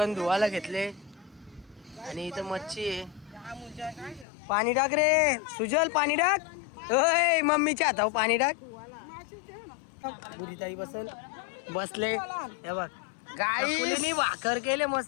धुवायला घेतले आणि इथं मच्छी आहे. पाणी टाक रे सुजल पाणी टाक. ओय मम्मीच्या हातावर पाणी टाक. बुरीताई बसले हे बघ गाईनी भाकर केले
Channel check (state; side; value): drops out; right; at 4.2 s